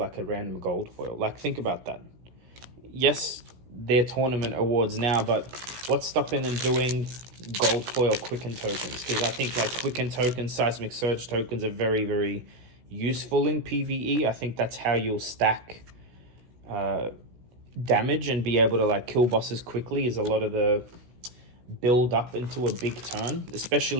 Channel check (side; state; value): left; late; 16 ms